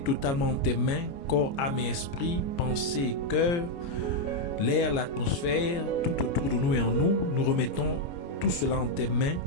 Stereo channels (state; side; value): late; right; 29 ms